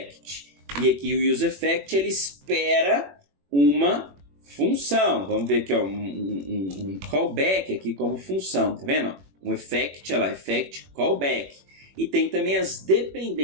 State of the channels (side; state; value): left; late; 21 ms